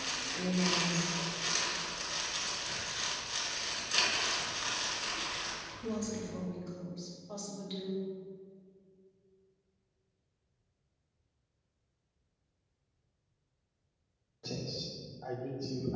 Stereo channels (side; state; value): both; identical; correlation 1.00